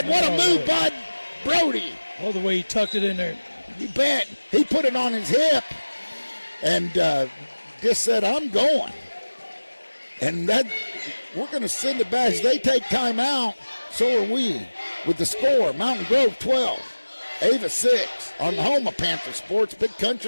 What a move by Brody. Oh, the way he tucked it in there. You bet. He put it on his hip and just said, I'm going. And that we're going to send it back. As they take time out, so are we. With the score, Mountain Grove 12, Ava 6 on the home of Panther Sports, Big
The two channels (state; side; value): inverted; both; correlation -1.00